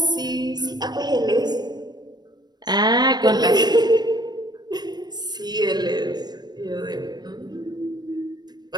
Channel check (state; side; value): late; left; 0.20 ms